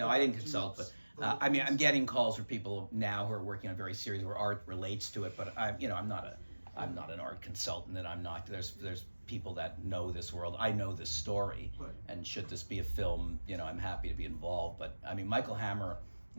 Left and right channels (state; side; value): inverted; both; correlation -1.00